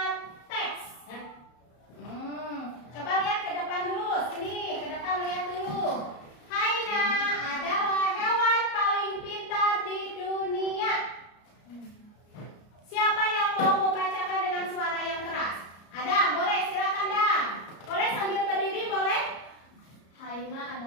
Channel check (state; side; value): late; right; 34 ms